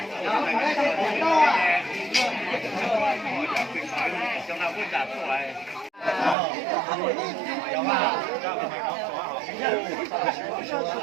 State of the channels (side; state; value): left; drops out; at 6.4 s